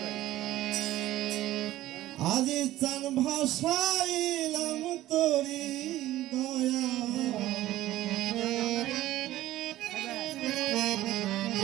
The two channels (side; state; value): left; quieter; 15.0 dB